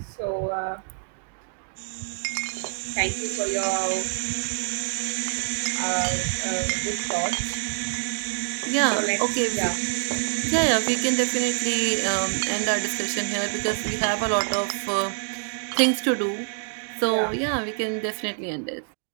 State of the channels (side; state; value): left; silent; digital silence